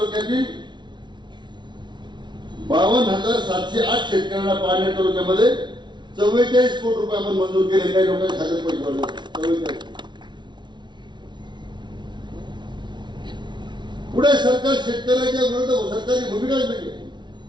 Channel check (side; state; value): left; late; 0.22 ms